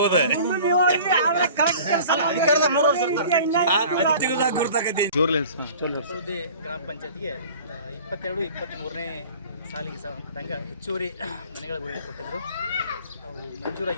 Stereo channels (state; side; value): inverted; both; correlation -0.44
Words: ಗ್ರಾಮ ಪಂಚಾಯತ್ಗೆ 22-23ನೇ ಸಾಲಿಗೆ ಸಂಬಂಧಪಟ್ಟಂಗೆ ಹೆಚ್ಚುವರಿ ಮನೆಗಳ ಗುರಿ ಕೊಟ್ಟಿದ್ದರು. ಅವು